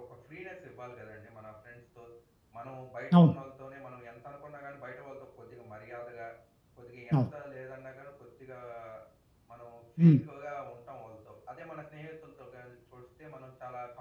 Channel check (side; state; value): both; identical; correlation 1.00